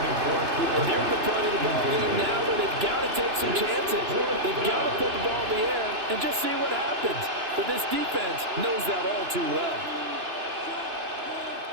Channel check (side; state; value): left; late; 2.9 ms